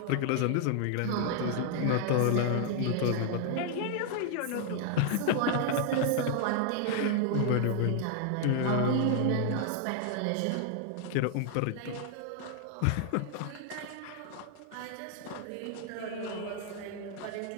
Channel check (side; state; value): both; different; correlation 0.00